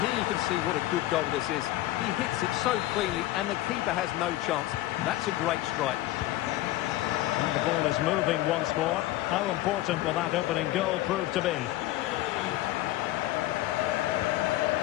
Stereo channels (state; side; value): quieter; right; 16.0 dB